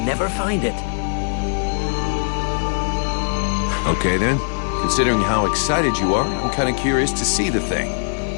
never find it. Okay, then. Considering how excited you are, I'm kind of curious to see the thing.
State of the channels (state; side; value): silent; right; digital silence